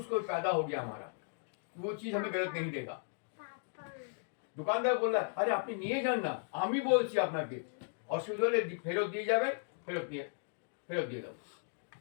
पैदा हो गया हमारा, वो चीज हमें गलत नहीं देगा। दुकानदार बोल रहा है, अरे अपनी नहीं जानना, हम ही बोलছি আপনাকে, অসুবিধা ফেরত দিয়ে যাবেন, ফেরত দিয়ে দাও।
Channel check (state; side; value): silent; right; 54 dB below the other